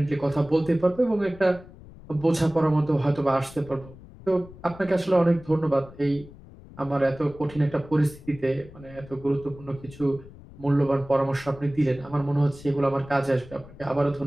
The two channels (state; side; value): noise; left; rumble, 19 dB below the sound